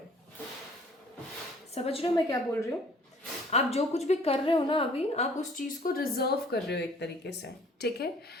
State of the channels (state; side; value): normal; both; correlation 0.55